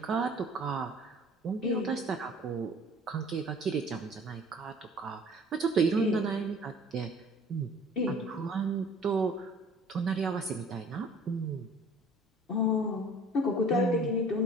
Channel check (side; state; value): both; normal; correlation 0.50